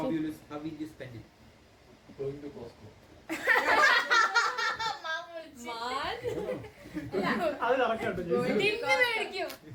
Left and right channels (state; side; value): identical; both; correlation 1.00